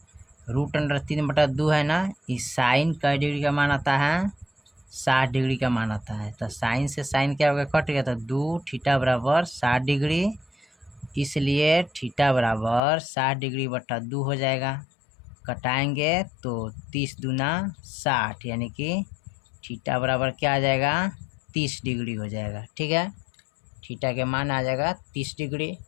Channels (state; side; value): drops out; right; at 12.8 s